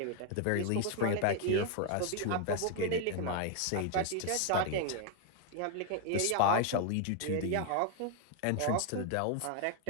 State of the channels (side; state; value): both; different; correlation 0.00